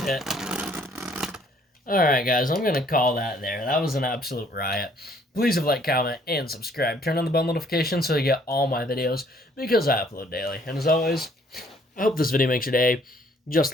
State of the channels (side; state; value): both; normal; correlation 0.62